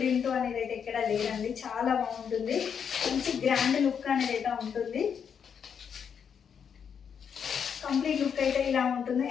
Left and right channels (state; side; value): quieter; right; 7.3 dB